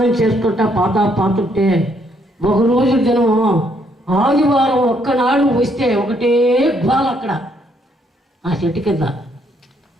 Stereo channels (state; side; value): normal; both; correlation 0.71